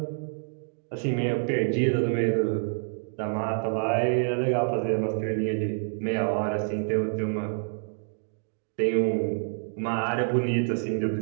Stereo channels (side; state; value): left; silent; digital silence